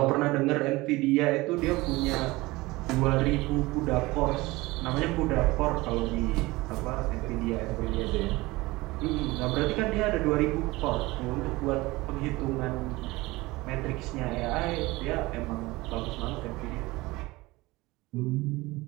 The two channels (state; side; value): quieter; left; 21.1 dB